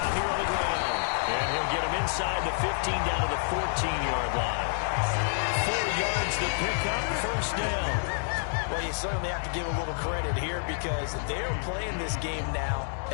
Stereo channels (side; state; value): right; silent; digital silence